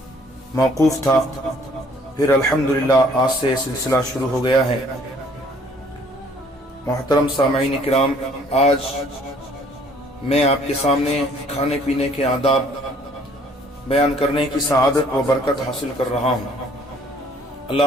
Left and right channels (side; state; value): both; normal; correlation 0.59